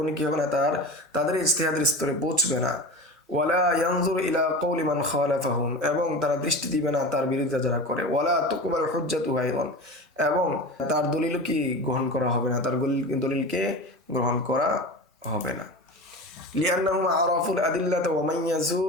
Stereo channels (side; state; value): both; normal; correlation 0.30